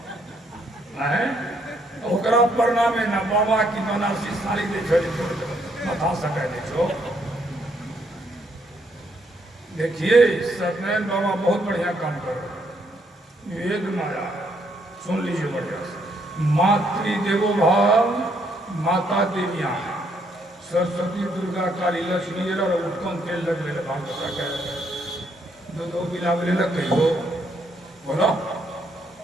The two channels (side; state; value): both; normal; correlation 0.72